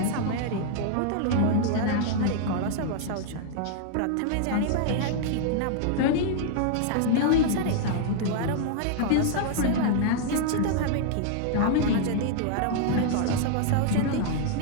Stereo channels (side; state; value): both; different; correlation -0.01